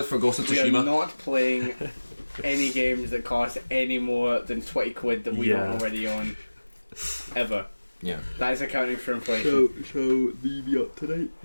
for Ghost of We Tsushima. are not playing any games that cost any more than 20 quid that we don't already own. Ever. Yeah. That is accounting for inflation. Shall we be up tonight?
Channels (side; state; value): both; inverted; correlation -1.00